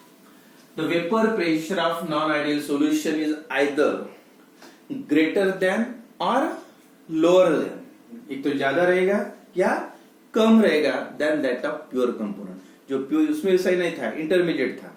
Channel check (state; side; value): identical; both; correlation 1.00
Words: the vapor pressure of non-ideal solution is either greater than or lower than, एक तो ज्यादा रहेगा या कम रहेगा than that of pure component, जो प्योर उसमें सही नहीं था, इंटरमीडिएट था,